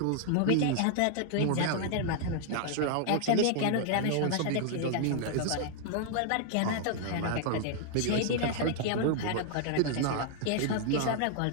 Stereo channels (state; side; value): different; both; correlation -0.01